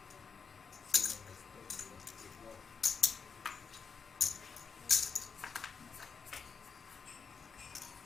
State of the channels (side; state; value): right; quieter; 5.7 dB